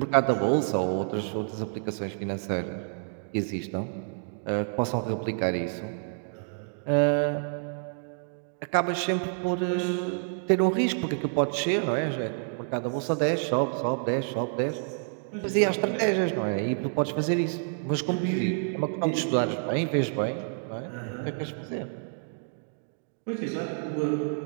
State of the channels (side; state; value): left; silent; 59 dB below the other